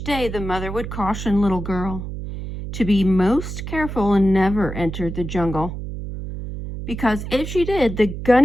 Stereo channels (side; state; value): right; noise; hum, 7 dB below the sound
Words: day the mother would caution little girl to be most careful and never enter the jungle, because if she did, the